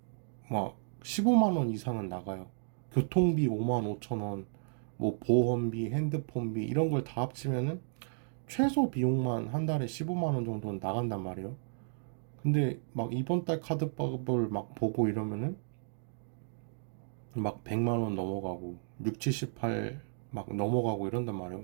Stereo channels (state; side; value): silent; left; digital silence